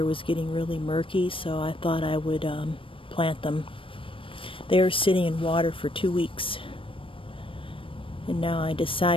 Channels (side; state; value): right; late; 0.25 ms